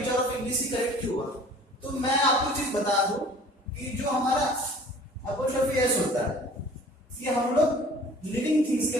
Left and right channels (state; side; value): normal; both; correlation 0.49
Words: of English he correct क्यों हुआ? तो मैं आपको चीज बता दूं कि जो हमारा अपोस्ट्रोफी एस होता है, ये हम लोग लिविंग थिंग्स के